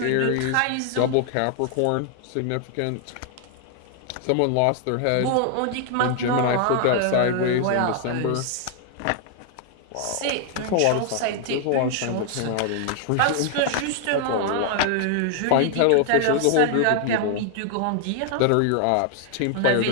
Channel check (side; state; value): both; different; correlation 0.00